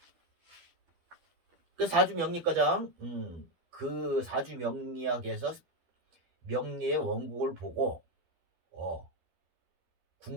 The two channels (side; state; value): left; late; 12 ms